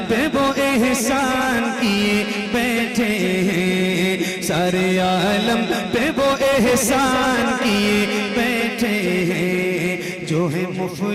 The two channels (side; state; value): both; identical; correlation 1.00